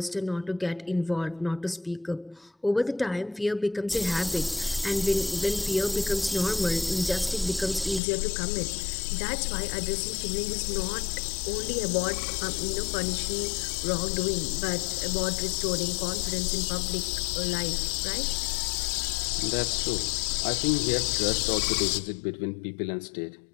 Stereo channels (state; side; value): drops out; right; at 8.0 s